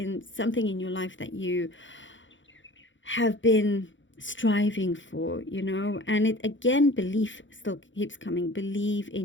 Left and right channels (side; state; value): right; late; 0.55 ms